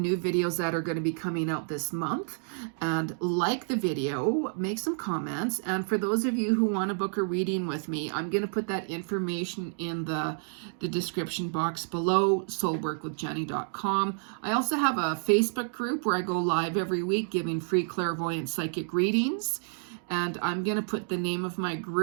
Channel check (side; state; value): left; silent; digital silence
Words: videos that are going to be coming out this month. And like the video, make some comments. And for those of you who want to book a reading with me, I'm going to put that information in the description box below, soulworkwithjeni.com. I also have a Facebook group where I go live every week giving free clairvoyant psychic readings. And I'm going to put the name of my